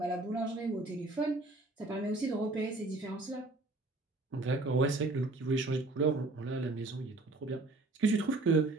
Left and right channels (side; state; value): left; quieter; 3.0 dB